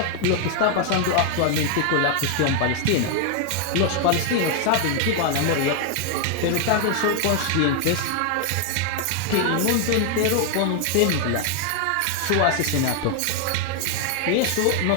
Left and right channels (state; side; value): different; both; correlation 0.00